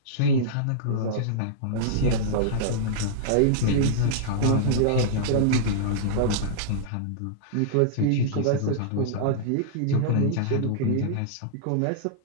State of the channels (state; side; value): different; both; correlation -0.02